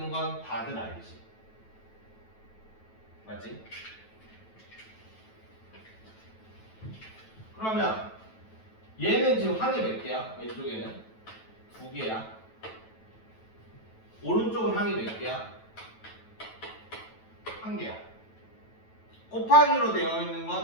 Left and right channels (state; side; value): late; right; 9.2 ms